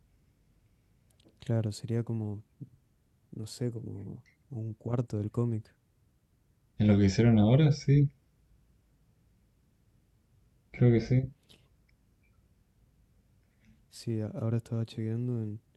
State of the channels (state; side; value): identical; both; correlation 1.00